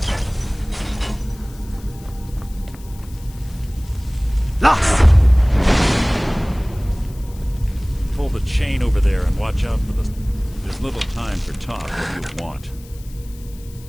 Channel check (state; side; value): noise; left; hiss, 23 dB below the sound